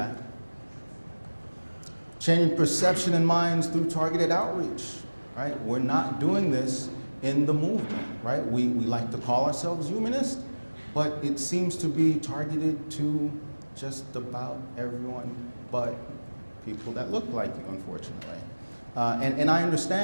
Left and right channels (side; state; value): both; inverted; correlation -1.00